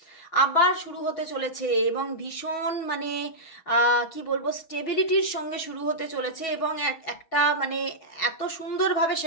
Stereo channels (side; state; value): right; late; 6.2 ms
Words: আবার শুরু হতে চলেছে। এবং ভীষণ মানে কি বলবো, স্টেবিলিটির সঙ্গে শুরু হতে চলেছে। এবং একটা মানে এত সুন্দরভাবে